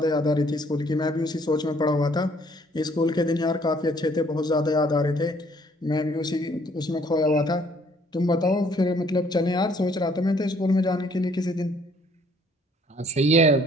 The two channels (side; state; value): both; normal; correlation 0.62